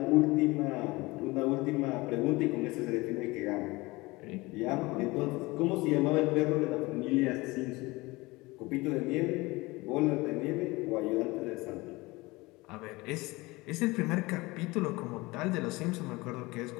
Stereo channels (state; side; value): quieter; right; 22.4 dB